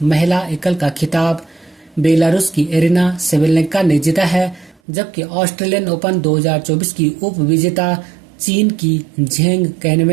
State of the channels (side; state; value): left; drops out; at 4.8 s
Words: महिला एकल का खिताब बेलारूस की एरिना सेवेलेंका ने जीता है, जबकि ऑस्ट्रेलियन ओपन 2024 की उप विजेता चीन की झेंग